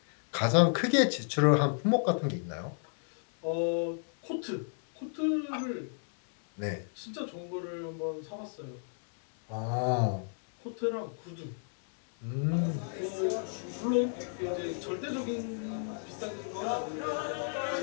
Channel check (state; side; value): silent; right; digital silence